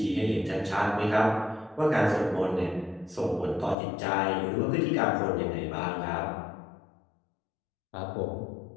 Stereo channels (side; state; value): right; drops out; at 3.8 s